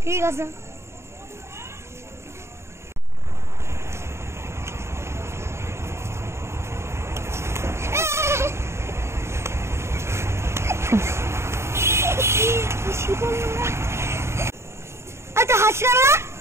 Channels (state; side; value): late; left; 0.13 ms